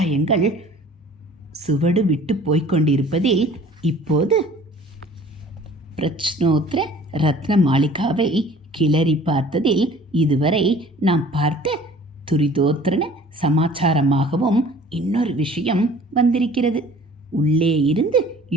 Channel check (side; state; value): both; normal; correlation 0.49